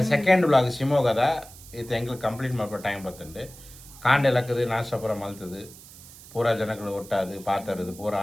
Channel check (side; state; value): right; noise; hiss, 19 dB below the sound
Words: ಸೆಕೆಂಡ್ ಬ್ಲಾಗ್ ಶಿವಮೊಗ್ಗದ ಇತ್ತ ಎಂಗ್ಲು ಕಂಪ್ಲೀಟ್ ಮಾಡ್ಕೊ ಟೈಮ್ ಬರ್ತಂಡು ಕಾಂಡೆ ಲಕ್ಕದು ನಾಷ್ಟ ಪೂರ ಮಲ್ತದು ಪೂರ ಜನಗಳು ಒಟ್ಟಾದು ಪಾತರದು ಪೂರ